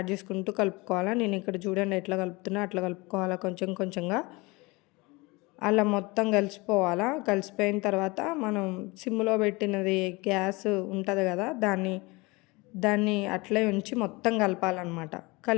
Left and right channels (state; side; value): quieter; right; 24.5 dB